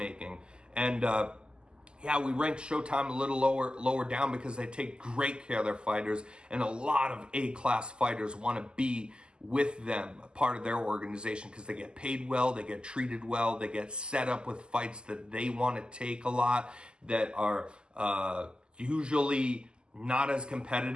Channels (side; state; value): left; late; 0.048 ms